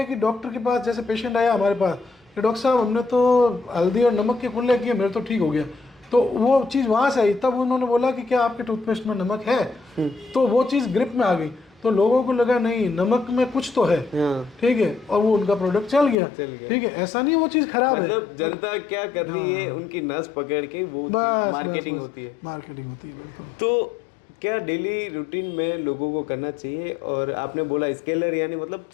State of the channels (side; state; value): right; drops out; at 16.2 s